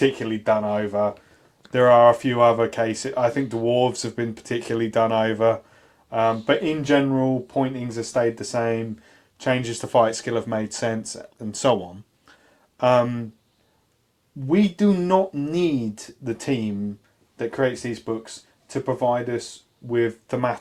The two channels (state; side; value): identical; both; correlation 1.00